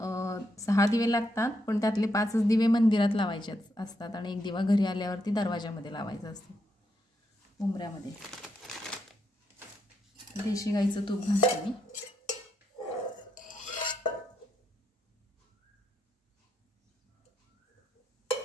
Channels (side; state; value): both; normal; correlation 0.80